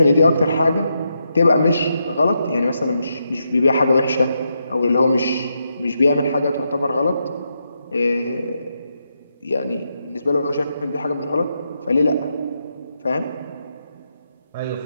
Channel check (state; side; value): inverted; both; correlation -0.83